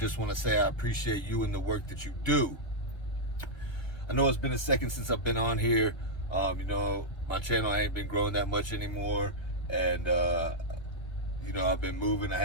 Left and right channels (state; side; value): late; right; 1.2 ms